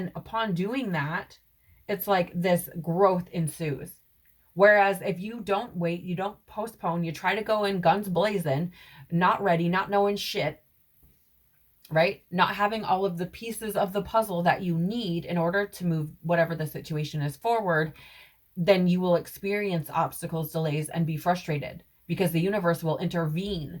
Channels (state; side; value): identical; both; correlation 1.00